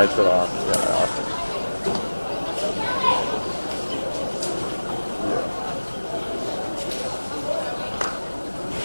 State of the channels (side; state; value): both; inverted; correlation -1.00